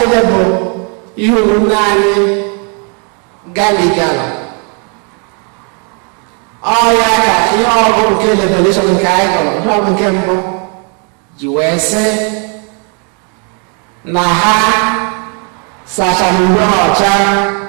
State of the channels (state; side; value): quieter; left; 38.0 dB